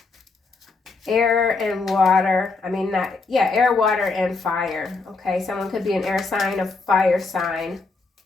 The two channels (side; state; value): right; quieter; 4.0 dB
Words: Air and water. Air, water, and fire. Okay, someone could be an air sign, a fire sign.